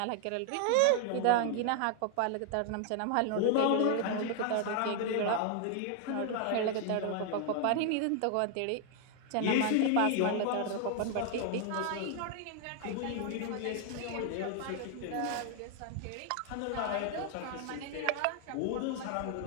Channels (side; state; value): both; different; correlation 0.00